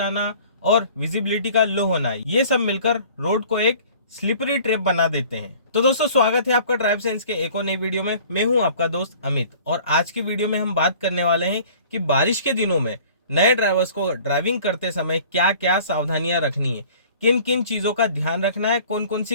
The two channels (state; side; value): inverted; both; correlation -0.49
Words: और विजिबिलिटी का लो होना, ये सब मिलकर रोड को एक स्लिपरी ट्रैप बना देते हैं। तो दोस्तों, स्वागत है आपका ड्राइव सेंस के एक और नई वीडियो में। मैं हूं आपका दोस्त अमित, और आज की वीडियो में हम बात करने वाले हैं कि बारिश के दिनों में नए ड्राइवर्स को ड्राइविंग करते समय क्या क्या सावधानियां रखनी है, किन किन चीजों का ध्यान रखना है, कौन कौन